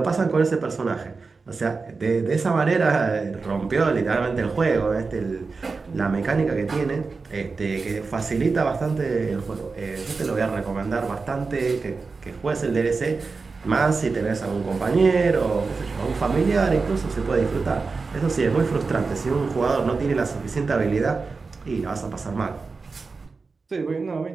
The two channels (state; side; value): quieter; left; 4.4 dB